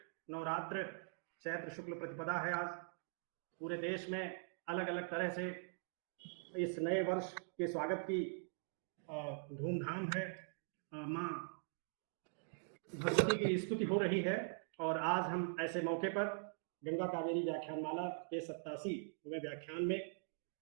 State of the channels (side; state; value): left; silent; digital silence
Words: नवरात्र चैत्र शुक्ल प्रतिपदा है। आज पूरे देश में अलग अलग तरह से इस नए वर्ष के स्वागत की धूमधाम है। माँ भगवती की स्तुति हो रही है और आज हम ऐसे मौके पर गंगा कावेरी व्याख्यानमाला के 87वें व्याख्यान में